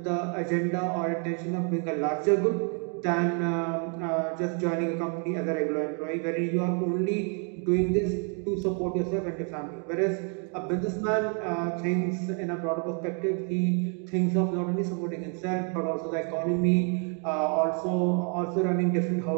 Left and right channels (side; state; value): left; quieter; 39.8 dB